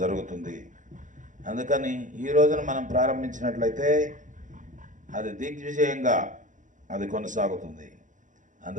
అందుకని ఈ రోజున మనం ప్రారంభించినట్లయితే అది దిగ్విజయంగా అది కొనసాగుతుంది.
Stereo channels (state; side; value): late; left; 0.37 ms